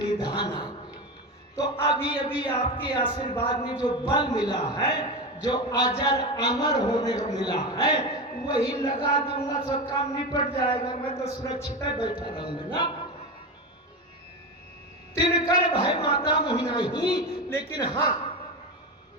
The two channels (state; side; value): normal; both; correlation 0.20